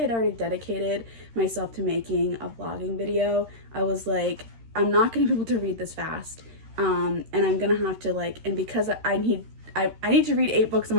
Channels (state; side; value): late; left; 13 ms